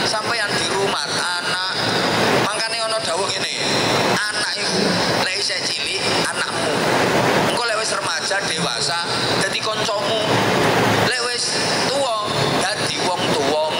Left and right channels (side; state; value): both; identical; correlation 1.00